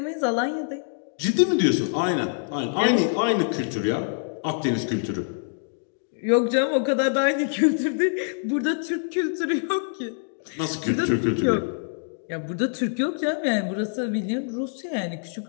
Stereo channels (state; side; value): silent; right; digital silence